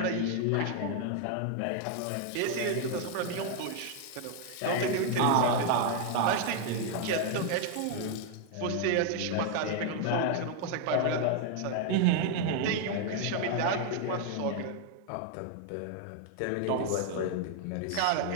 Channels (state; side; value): different; both; correlation 0.01